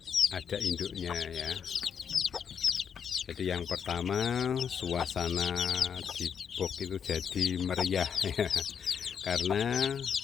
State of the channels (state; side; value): quieter; right; 7.4 dB